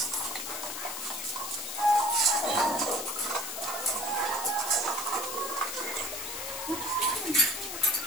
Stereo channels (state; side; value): noise; left; hiss, 5 dB below the sound